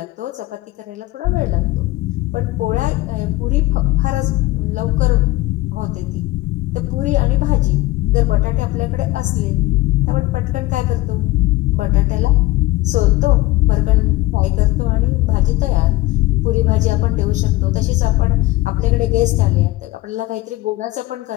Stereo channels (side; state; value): right; quieter; 18.9 dB